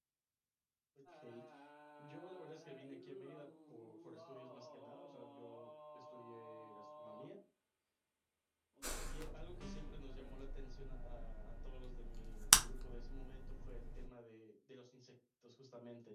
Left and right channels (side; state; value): both; identical; correlation 1.00